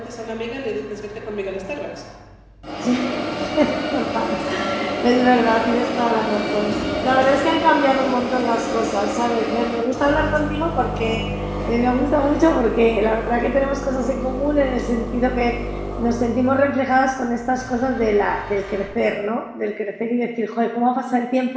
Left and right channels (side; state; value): both; identical; correlation 1.00